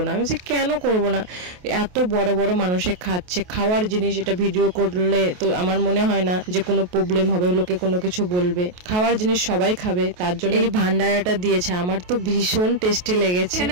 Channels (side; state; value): left; late; 28 ms